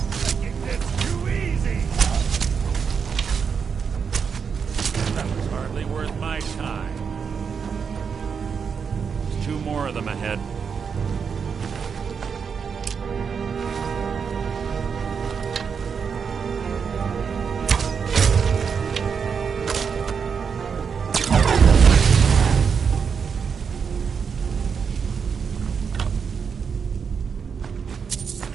More of them ahead.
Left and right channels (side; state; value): left; quieter; 6.3 dB